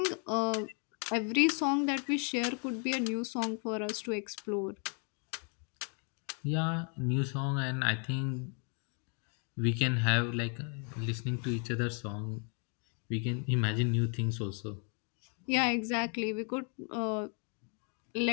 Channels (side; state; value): right; quieter; 40.0 dB